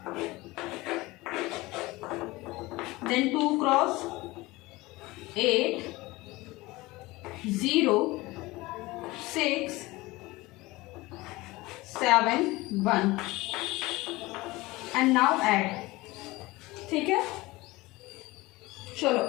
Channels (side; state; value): right; quieter; 20.8 dB